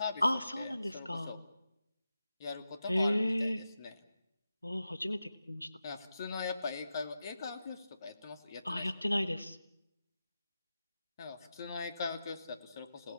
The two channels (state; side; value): inverted; both; correlation -0.91